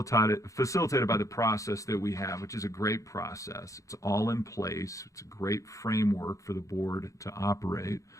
by the process that we have, which is a great process. It's all in place. It's a great framework for the board to operate.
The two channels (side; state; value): right; late; 0.16 ms